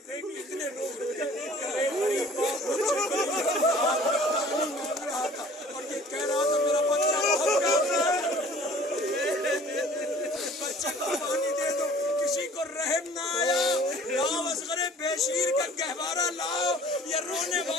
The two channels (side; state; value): both; normal; correlation 0.50